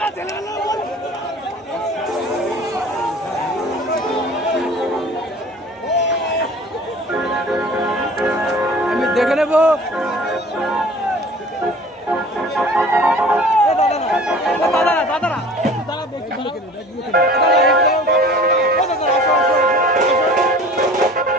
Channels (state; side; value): normal; both; correlation 0.45